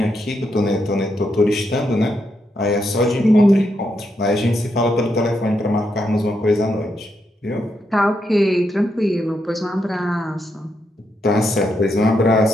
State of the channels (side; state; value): both; normal; correlation 0.81